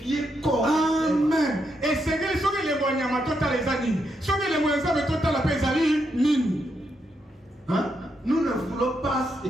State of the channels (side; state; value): both; normal; correlation 0.81